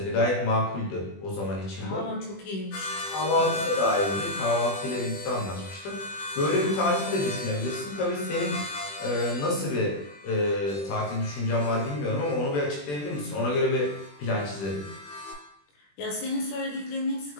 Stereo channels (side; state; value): right; late; 21 ms